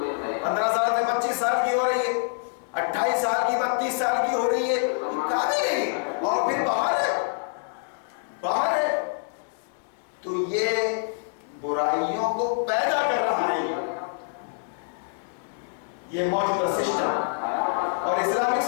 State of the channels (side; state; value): right; silent; digital silence